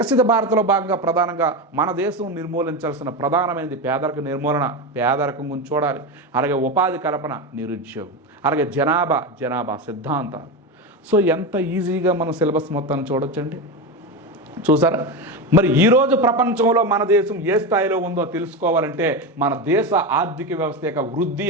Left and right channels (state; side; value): normal; both; correlation 0.17